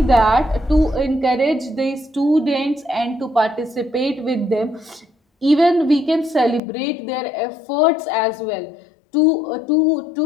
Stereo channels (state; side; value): drops out; right; at 6.6 s